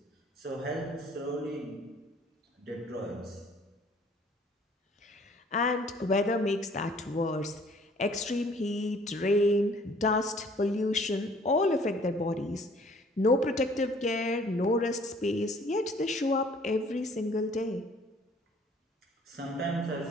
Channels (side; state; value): both; normal; correlation 0.57